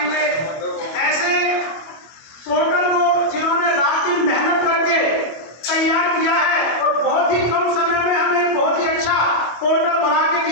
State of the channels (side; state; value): right; late; 25 ms